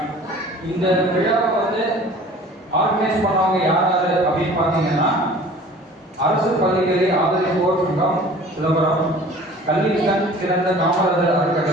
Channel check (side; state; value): both; normal; correlation 0.46